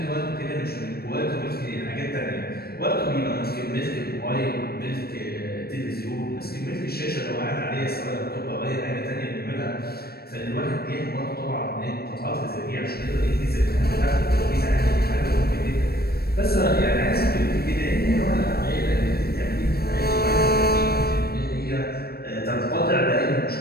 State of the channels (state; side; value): late; right; 0.45 ms